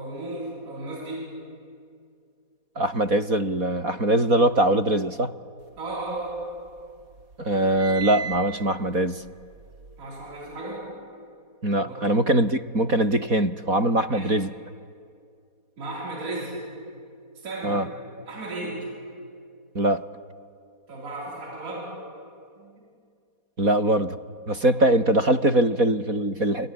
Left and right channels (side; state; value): left; late; 4.2 ms